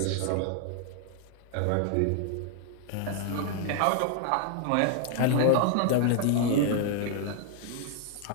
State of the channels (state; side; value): different; both; correlation 0.00